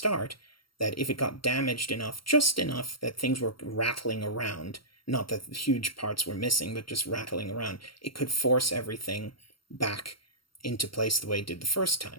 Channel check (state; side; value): late; right; 0.73 ms